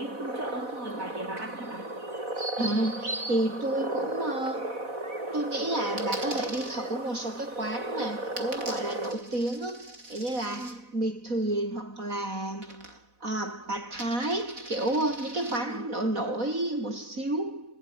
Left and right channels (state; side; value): late; left; 4.1 ms